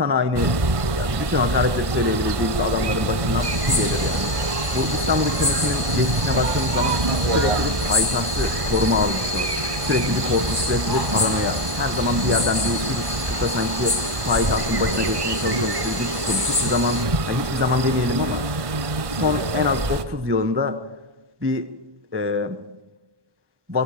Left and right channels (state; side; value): late; left; 1.1 ms